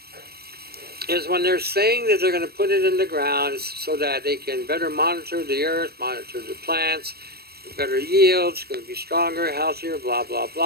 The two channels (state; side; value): late; left; 0.46 ms